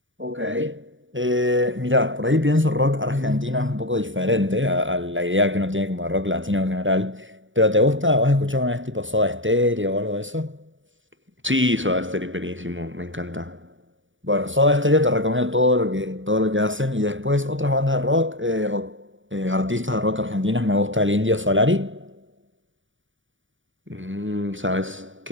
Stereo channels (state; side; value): late; left; 0.56 ms